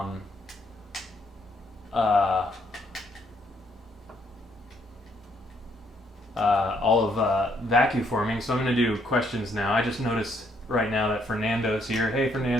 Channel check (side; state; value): both; normal; correlation 0.71